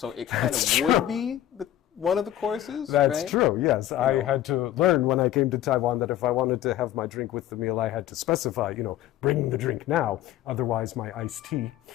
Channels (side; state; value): right; quieter; 12.7 dB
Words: it kind of would be one of the courses. That's true, yes. I had to learn when I came to Taiwan that if I wanted to have my drink with the meal, I had to specify, bring the drink now. Otherwise, my iced tea